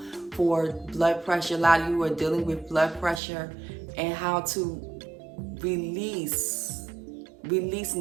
for blood pressure. A lot of you are dealing with blood pressure, and how to release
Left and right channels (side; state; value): left; drops out; at 3.2 s